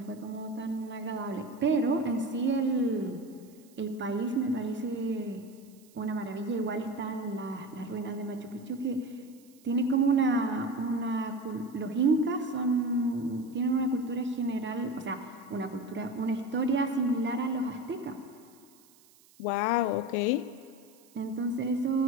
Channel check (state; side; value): noise; right; hiss, 28 dB below the sound